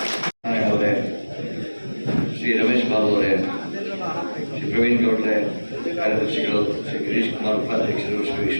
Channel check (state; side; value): inverted; both; correlation -1.00